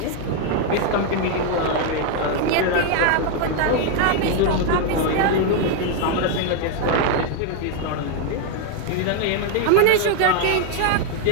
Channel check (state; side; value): different; both; correlation 0.01